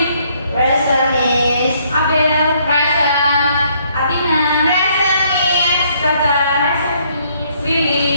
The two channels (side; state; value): both; inverted; correlation -0.67